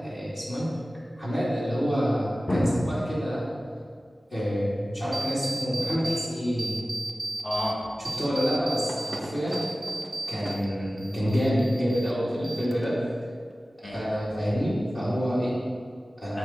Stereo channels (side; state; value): both; normal; correlation 0.96